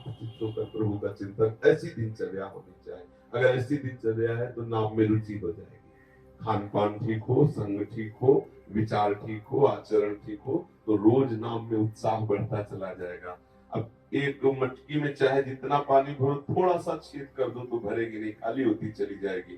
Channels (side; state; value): both; identical; correlation 1.00